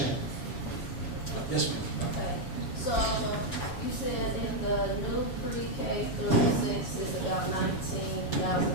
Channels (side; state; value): right; late; 7.1 ms